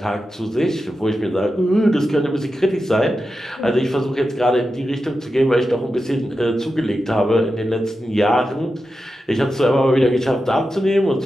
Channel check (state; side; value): normal; both; correlation 0.90